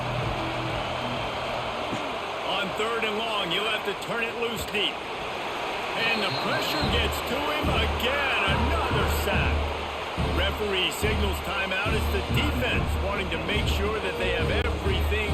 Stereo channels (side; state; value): both; identical; correlation 1.00